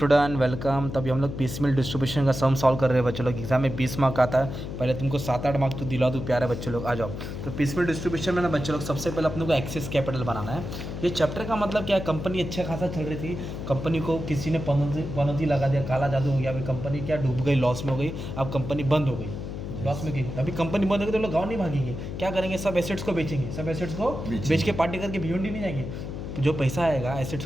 welcome. तभी हम लोग पीसमेल डिस्ट्रीब्यूशन का सम सॉल्व कर रहे हैं बच्चों लोग। एग्जाम में 20 मार्क आता है, पहले तुमको 7-8 मार्क तो दिला दूँ प्यारे बच्चों लोग। आ जाओ। तो पीसमेल डिस्ट्रीब्यूशन में ना बच्चों लोग सबसे पहले अपने को एक्सेस कैपिटल बनाना है। ये चैप्टर का मतलब क्या है, कंपनी अच्छा खासा चल रही थी, कंपनी को किसी ने पनौती लगा दिया, काला जादू हो गया, अभी कंपनी क्या डूब गई, लॉस में हो गई, अब कंपनी बंद हो गई, लॉस में गई। अभी कंपनी बंद हो गई तो लोग गाँव नहीं भागेंगे, क्या करेंगे, सब एसेट्स को बेचेंगे, सब एसेट्स को बेच के पार्टी करके भिवंडी नहीं जाएंगे। जो पैसा आएगा एसेट्स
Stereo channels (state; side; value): noise; left; hum, 7 dB below the sound